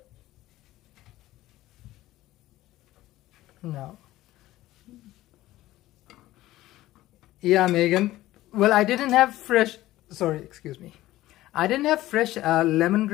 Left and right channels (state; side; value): quieter; right; 16.0 dB